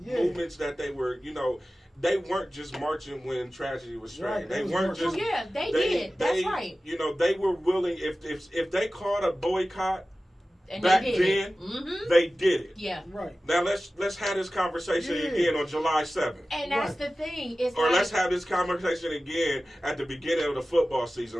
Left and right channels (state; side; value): normal; both; correlation 0.96